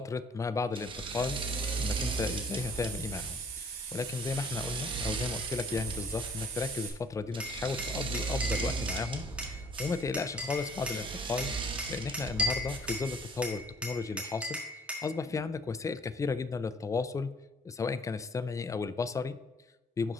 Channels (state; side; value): normal; both; correlation 0.56